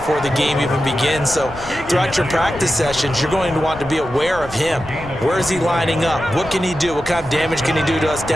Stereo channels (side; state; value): left; noise; rumble, 16 dB below the sound